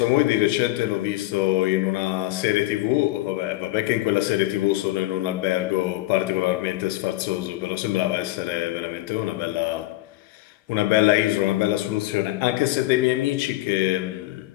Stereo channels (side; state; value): right; quieter; 17.8 dB